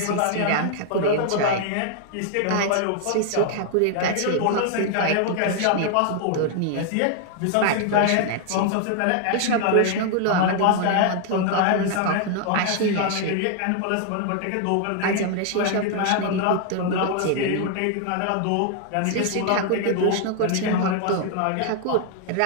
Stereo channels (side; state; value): both; different; correlation 0.00